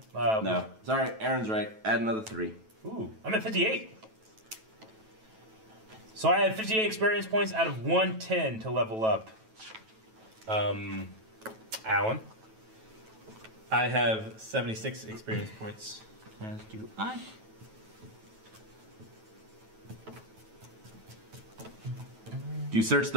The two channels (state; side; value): late; left; 9.2 ms